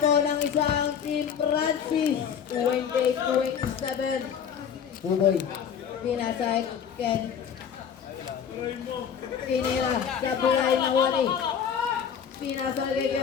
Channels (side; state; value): right; quieter; 7.8 dB